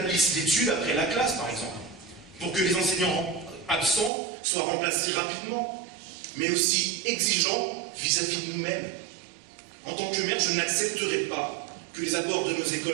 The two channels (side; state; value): left; drops out; at 4.1 s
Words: l'étude après la classe, par exemple, pour que les enseignants absents soient remplacés rapidement, mais aussi exigeants vis-à-vis de nous-mêmes. En tant que maire, je n'accepterai pas que les abords de nos